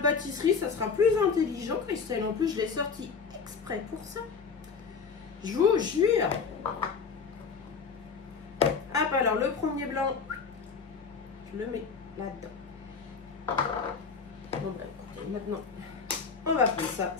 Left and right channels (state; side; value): quieter; right; 5.5 dB